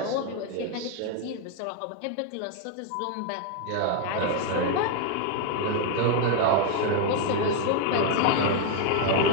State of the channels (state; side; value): different; both; correlation 0.01